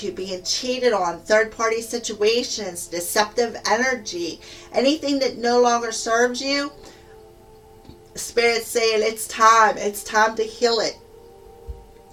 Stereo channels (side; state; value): both; identical; correlation 1.00